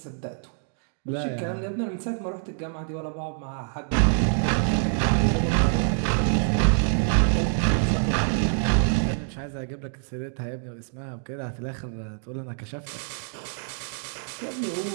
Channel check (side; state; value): left; silent; digital silence